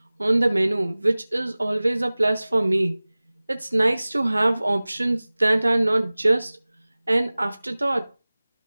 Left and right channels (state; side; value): inverted; both; correlation -0.99